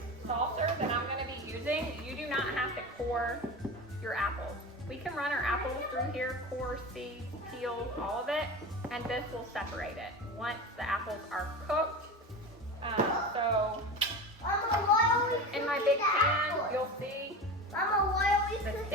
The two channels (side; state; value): both; normal; correlation 0.28